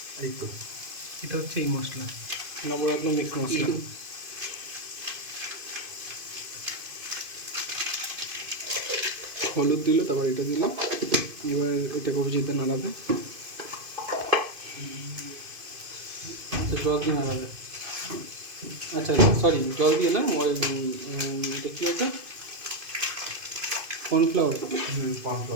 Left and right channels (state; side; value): late; left; 2.5 ms